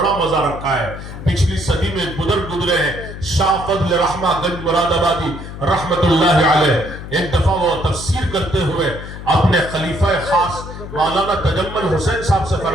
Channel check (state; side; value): noise; left; hum, 11 dB below the sound